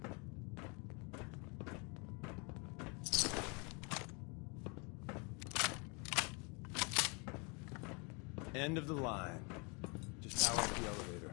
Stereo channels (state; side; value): quieter; right; 32.3 dB